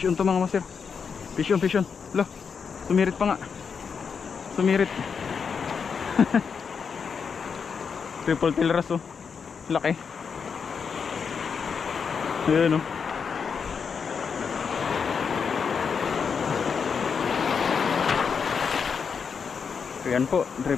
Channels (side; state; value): right; quieter; 6.1 dB